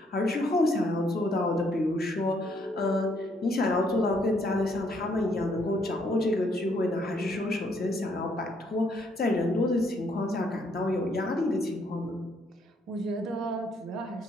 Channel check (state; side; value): normal; both; correlation 0.70